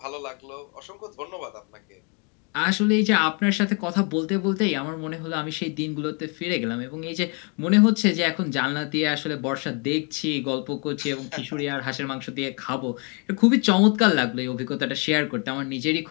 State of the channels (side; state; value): right; quieter; 35.2 dB